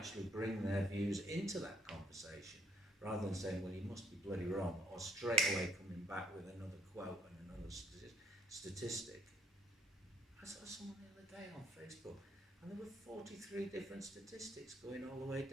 bring their views into that conversation, rather than saying, well, you must be bloody wrong, or straight away coming back with another quote and another statistic. I saw someone the other day on Facebook, and there were 43 different statistics going all the way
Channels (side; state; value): both; normal; correlation 0.63